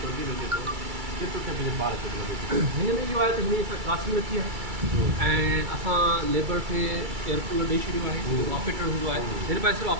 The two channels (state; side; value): late; left; 2.3 ms